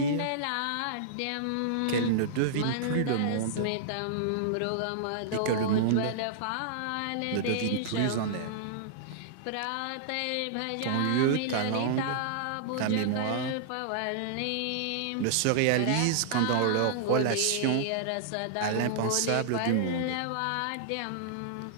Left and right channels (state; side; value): different; both; correlation -0.02